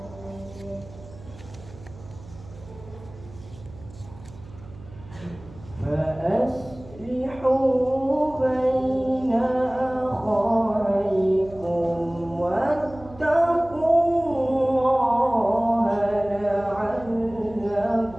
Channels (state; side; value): noise; right; hum, 19 dB below the sound